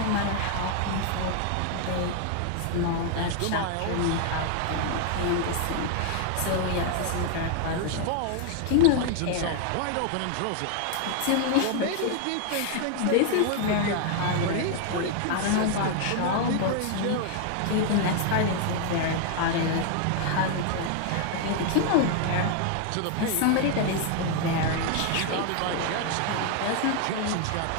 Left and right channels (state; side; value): different; both; correlation 0.00